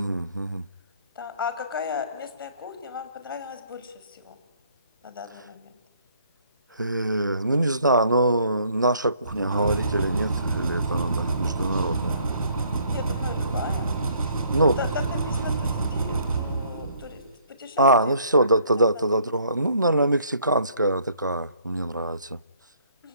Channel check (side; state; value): both; inverted; correlation -0.62